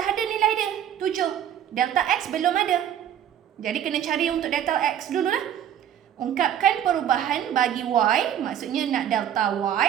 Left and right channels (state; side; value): quieter; left; 10.1 dB